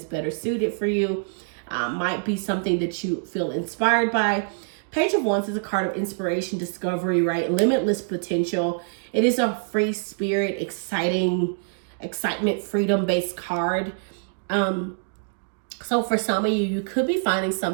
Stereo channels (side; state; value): left; silent; digital silence